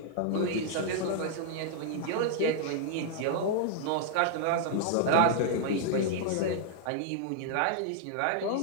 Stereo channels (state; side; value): different; both; correlation -0.01